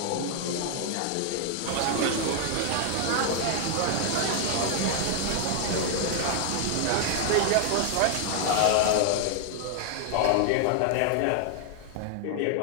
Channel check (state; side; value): different; both; correlation 0.00